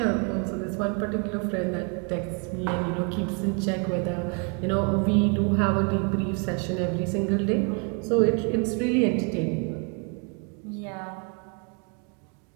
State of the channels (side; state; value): left; quieter; 37.1 dB